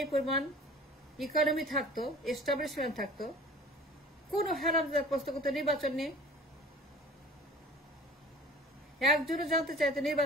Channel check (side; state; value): both; normal; correlation 0.44